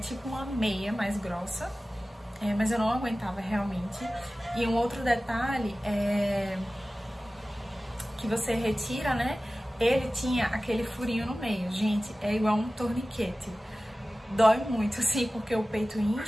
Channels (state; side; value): normal; both; correlation 0.97